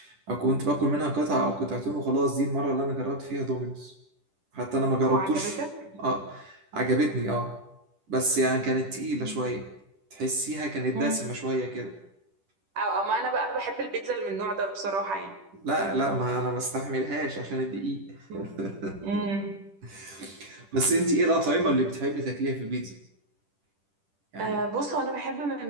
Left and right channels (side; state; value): left; late; 10 ms